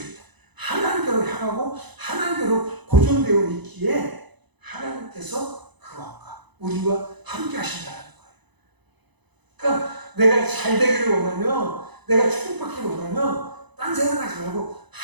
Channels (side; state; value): left; late; 1.0 ms